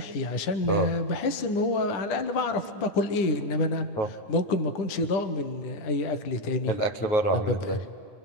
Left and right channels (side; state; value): right; late; 10 ms